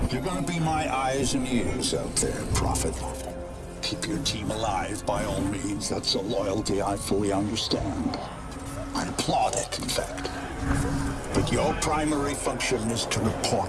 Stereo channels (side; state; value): both; identical; correlation 1.00